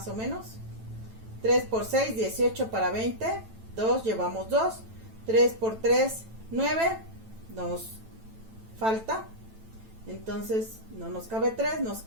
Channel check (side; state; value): left; late; 9.1 ms